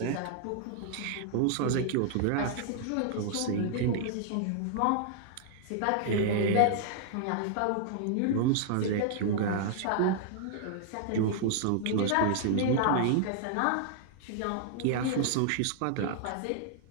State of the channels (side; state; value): both; different; correlation -0.01